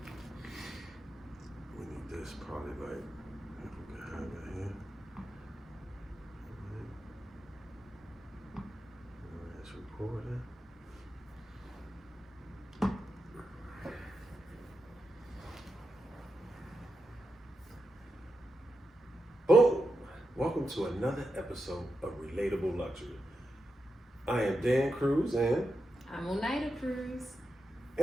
We need this probably like, if we can have it here. It's recording. Boom! Welcome to another episode of Relatable Luxury. I am Dan Cruz, and I'm Oneida Cruz.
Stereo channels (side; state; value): both; normal; correlation 0.88